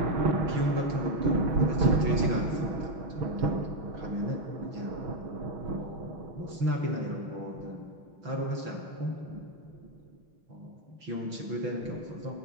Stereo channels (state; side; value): late; left; 6.0 ms